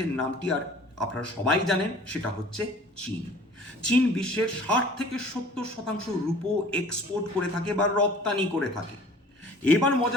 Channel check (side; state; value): both; normal; correlation 0.48